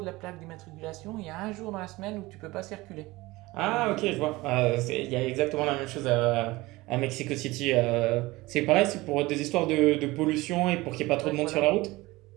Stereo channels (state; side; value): quieter; left; 20.5 dB